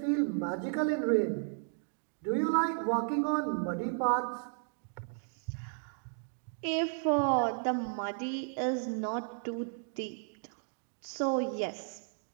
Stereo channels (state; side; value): silent; left; 55 dB below the other